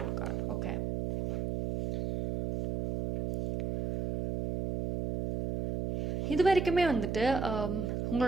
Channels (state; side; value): noise; right; hum, 2 dB below the sound